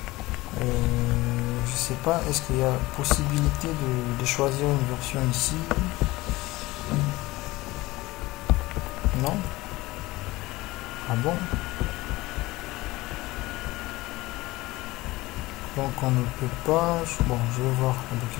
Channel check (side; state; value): right; quieter; 19.7 dB